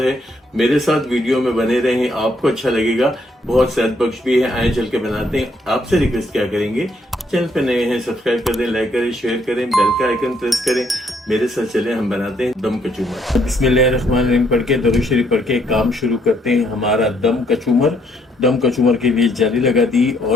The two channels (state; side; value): normal; both; correlation 0.71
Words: है। मेरे साथ वीडियो में बने रहें, आपको अच्छा लगेगा, बहुत सेहत बख्श भी है। आए चल के बनाते हैं। आपसे रिक्वेस्ट क्या करेंगे, चैनल पे नए हैं सब्सक्राइब कर दें, लाइक करें, शेयर करें, बेल का आइकन प्रेस करें। मेरे साथ चले, हम बनाते हैं दम कचूमर। बिस्मिल्लाहिर्रहमानिर्रहीम पढ़ के, दरूद शरीफ पढ़ के काम शुरू करते हैं हमारा दम कचूमर। दम कचूमर के लिए जाली लगा दी